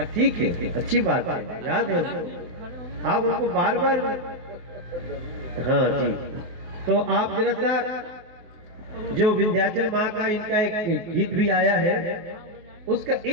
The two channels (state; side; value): late; left; 24 ms